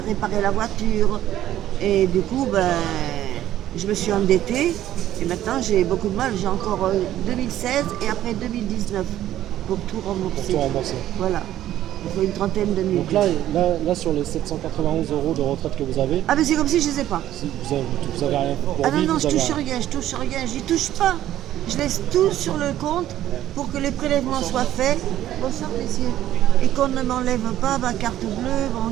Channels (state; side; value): quieter; left; 12.7 dB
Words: réparer la voiture. Et du coup, je me suis endettée. Et maintenant, j'ai beaucoup de mal. J'ai encore 2016 et après 2019 pour tout rembourser. Pour tout rembourser. Voilà. Il faut une trentaine de nuits. Donc là, sur les 791 euros de retraite que vous avez... Ah mais c'est comme si je ne les ai pas. Si vous avez rien pour non, vivre, je touche rien, j'y touche pas. Je laisse tout sur le compte pour que les prélèvements soient faits. Bonsoir messieurs. Et qu'on ne m'enlève pas ma carte bleue, mon